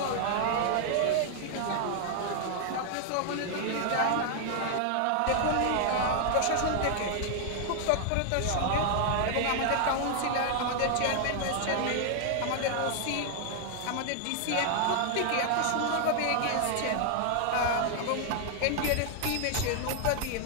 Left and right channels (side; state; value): both; different; correlation 0.00